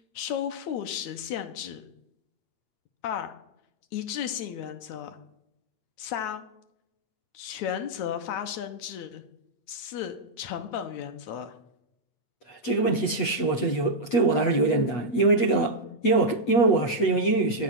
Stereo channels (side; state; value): right; late; 8.3 ms